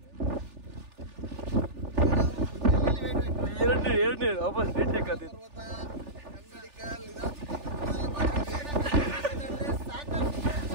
ಎರಡನೇ ವಾಪಸ್ ರೀಟೇಕ್ ಆದಿತ್ತು.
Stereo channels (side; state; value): left; late; 3.4 ms